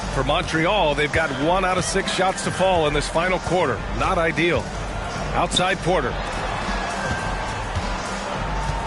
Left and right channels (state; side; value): identical; both; correlation 1.00